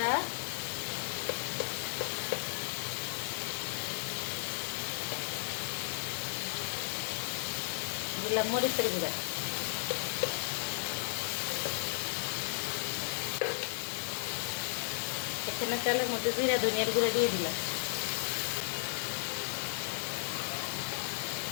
দিলাম মরিচের গুঁড়া, এখানে তেলের মধ্যে জিরা ধনিয়ার গুঁড়া দিয়ে দিলাম।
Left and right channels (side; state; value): right; silent; 55 dB below the other